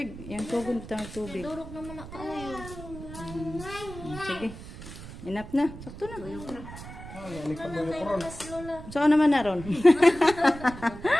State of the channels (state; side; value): noise; right; rumble, 13 dB below the sound